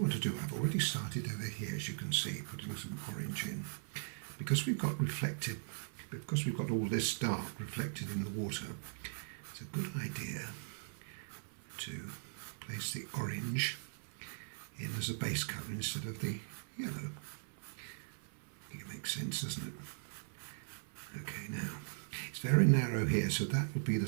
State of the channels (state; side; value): silent; left; 51 dB below the other